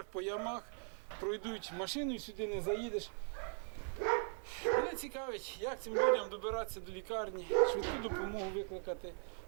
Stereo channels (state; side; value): silent; left; 51 dB below the other